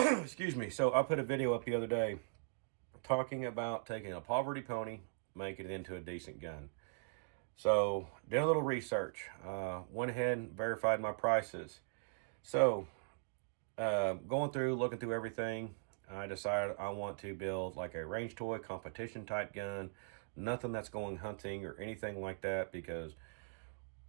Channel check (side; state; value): left; silent; digital silence